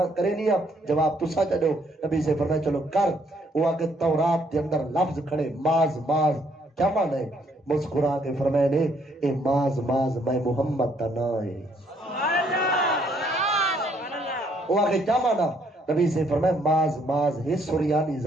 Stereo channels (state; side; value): normal; both; correlation 0.68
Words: جواب تسا چڑھو نبی سے فرمایا چلو کر وہ آکے تورات دے اندر لفظ کھڑے ماز ماز کیا معنی ہے مسکرا کے فرمائے نے اے ماز ماز میں محمد دا نا ہے وہ آگے کیا مانا نبی سے فرمائے ماز ماز ہے سریانی